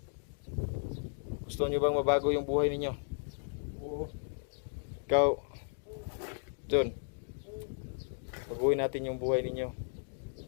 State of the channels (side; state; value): right; silent; digital silence